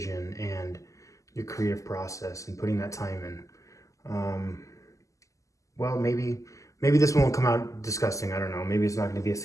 and your creative process and putting that time in. Well, maybe this one will come out disgusting. I don't know. Maybe it's not going to be a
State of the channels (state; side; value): late; right; 0.16 ms